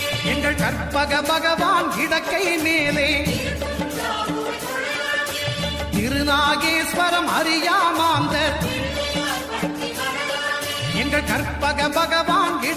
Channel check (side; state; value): both; identical; correlation 1.00